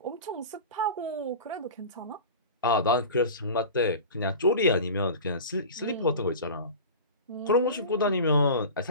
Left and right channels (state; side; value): inverted; both; correlation -0.34